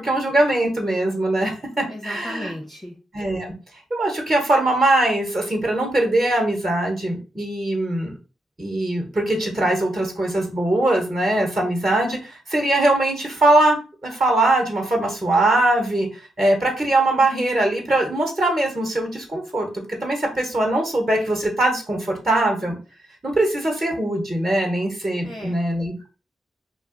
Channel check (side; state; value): both; normal; correlation 0.81